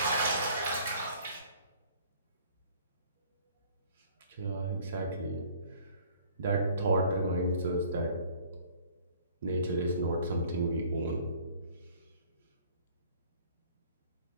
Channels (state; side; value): inverted; both; correlation -0.53